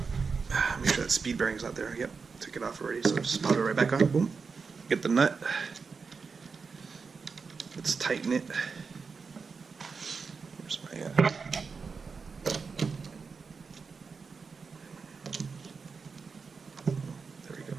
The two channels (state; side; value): quieter; left; 5.1 dB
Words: Make sure that speed bearing's out there. Yep, took it off already, so just pop it right back on. Boom. Get the nut. Let's tighten it. Where's my...